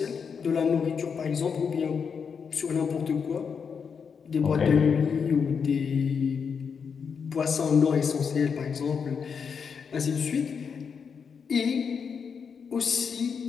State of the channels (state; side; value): quieter; right; 6.3 dB